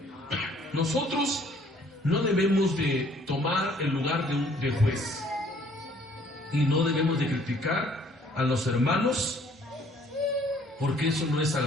Nosotros no debemos de tomar el lugar de juez. Y no debemos de criticar a los hermanos, porque eso no es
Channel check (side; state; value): both; normal; correlation 0.60